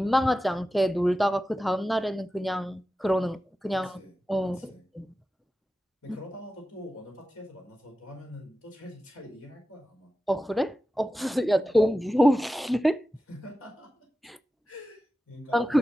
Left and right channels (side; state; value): both; normal; correlation 0.94